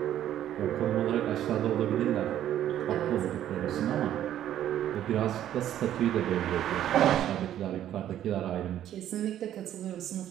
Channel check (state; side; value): quieter; left; 11.5 dB